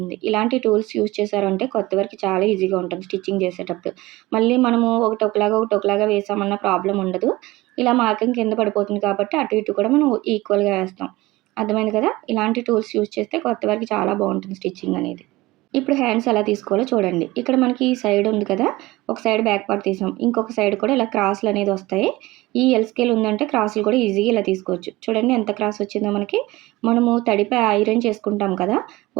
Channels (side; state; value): left; quieter; 19.8 dB